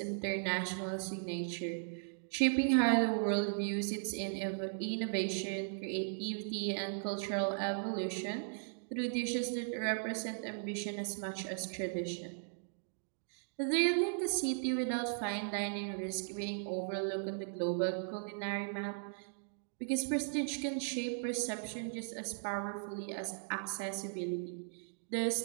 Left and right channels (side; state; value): left; silent; digital silence